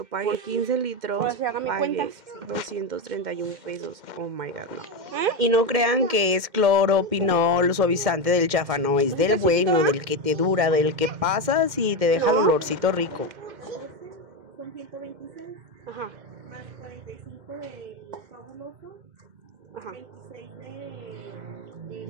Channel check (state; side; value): late; left; 2.1 ms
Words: pagué 15 litros, pagué 231 pesos, oh my god, no. Y no crean que es cloro, pinol, suavizante del chafa, no, es del bueno, del que te dura, del que pasas y te deja el olorcito rico. Son 126. Ajá. Más 45 de fabuloso. Ajá. 26 de